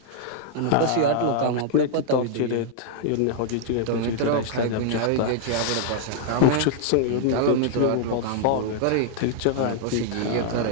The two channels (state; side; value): different; both; correlation -0.01